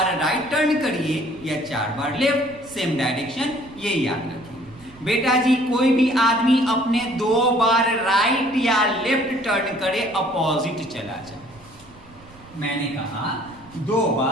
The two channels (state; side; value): noise; right; rumble, 23 dB below the sound